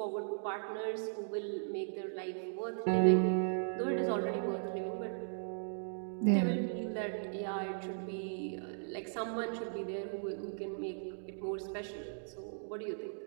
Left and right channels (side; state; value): left; silent; digital silence